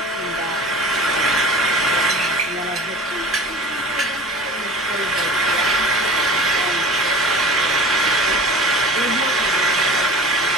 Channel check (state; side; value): normal; both; correlation 0.39